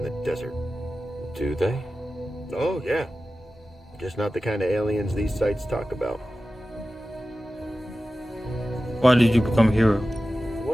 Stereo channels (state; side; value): normal; both; correlation 0.95